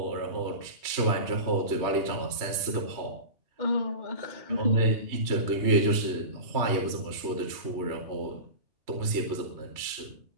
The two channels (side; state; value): left; late; 3.2 ms